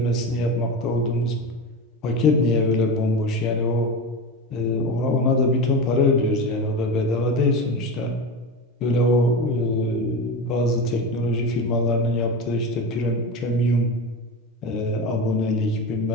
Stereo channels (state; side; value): normal; both; correlation 0.23